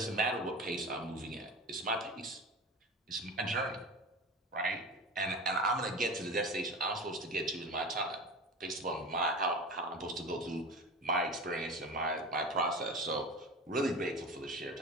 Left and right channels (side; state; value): both; normal; correlation 0.31